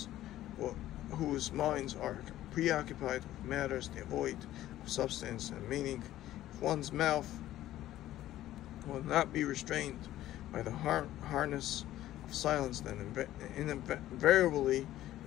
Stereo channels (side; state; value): right; quieter; 14.0 dB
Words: whose minds are preoccupied with matters devoid of substance and meaning? If one's mouth will not be restrained by the harness of silence, then invariably